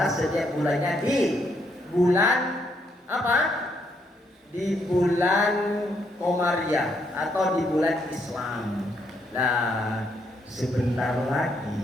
setiap bulannya di bulan apa? Di bulan Komariah atau di bulan Islam. Nah, sebentar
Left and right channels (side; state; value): both; normal; correlation 0.74